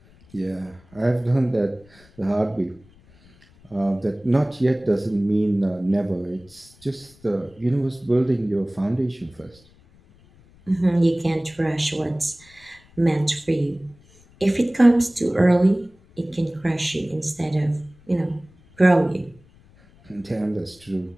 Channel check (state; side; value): noise; left; rumble, 28 dB below the sound